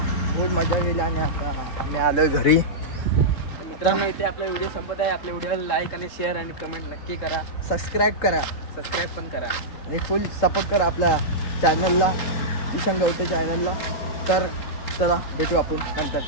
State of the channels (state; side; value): late; right; 3.7 ms